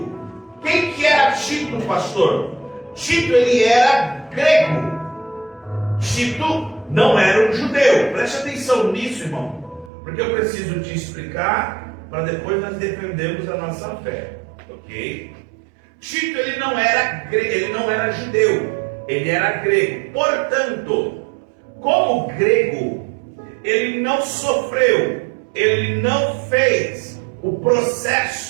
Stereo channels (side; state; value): left; drops out; at 9.9 s